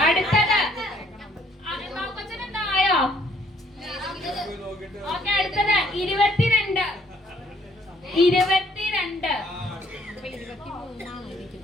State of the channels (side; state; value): both; normal; correlation 0.65